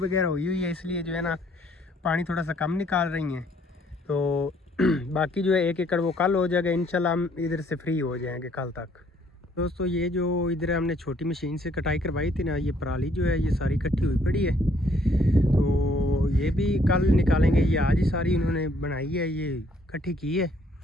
हुई है, इसलिए जो है ना पानी थोड़ा सा कम निकाल रही हैं। तो बाकी जो है 1 एकड़ वो कल हो जाएगा इंशाल्लाह। हम इधर से फ्री हो जाएंगे कल तक। दोस्तों ये जो इधर हमने छोटी मशीन से कटाई करवाई थी ना, ये पराली जो है ये सारी इकट्ठी हुई पड़ी है। तो ये भी कल निकालेंगे। ये आज ही सारी इन्होंने बनाई है, ये इकट्ठी की है,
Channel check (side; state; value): both; normal; correlation 0.65